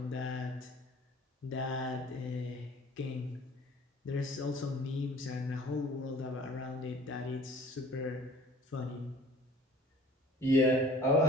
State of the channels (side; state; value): both; normal; correlation 0.49